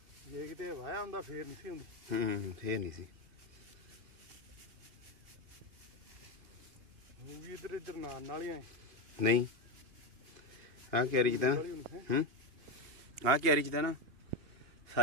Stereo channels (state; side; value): late; left; 2.8 ms